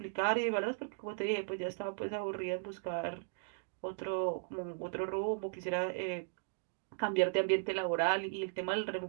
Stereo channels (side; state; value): left; silent; digital silence